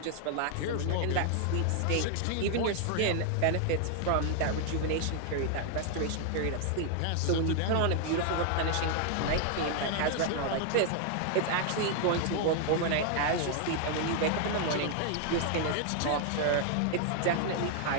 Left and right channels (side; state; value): both; different; correlation 0.00